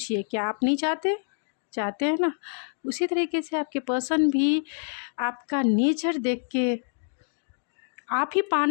क्या आप नहीं चाहते? चाहते हैं ना। उसी तरीके से आपके पर्सन भी आपका नेचर देख के आप ही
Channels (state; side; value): silent; right; digital silence